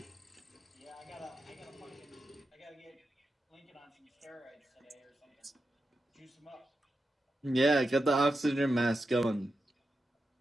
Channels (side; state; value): both; normal; correlation 0.89